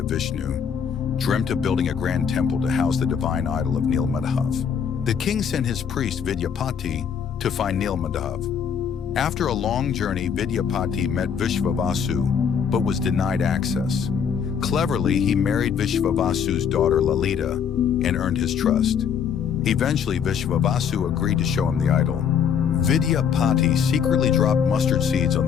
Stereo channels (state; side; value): quieter; right; 7.3 dB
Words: Vishnu, dreamt of building a grand temple to house the divine idol of Nilmadhav. The king sent his priest Vidyapati to find Nilmadhav. After a long journey, Vidyapati met Vishvavasu, but was denied access. Cleverly, he married Vishvavasu's daughter Lalita and earned his trust. Eventually, Vishvavasu agreed to show him the idol. Vidyapati secretly dropped mustard seeds on